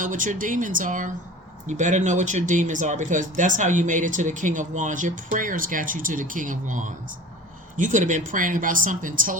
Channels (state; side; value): normal; both; correlation 0.39